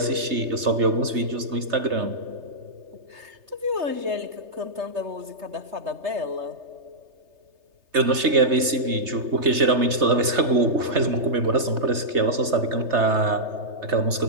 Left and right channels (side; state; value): left; late; 3.3 ms